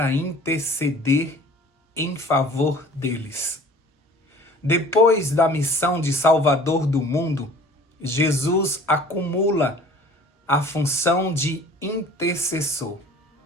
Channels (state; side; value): normal; both; correlation 0.47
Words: interceder em favor deles. Depois da missão de Salvador do mundo, Jesus acumula a função de intercessor.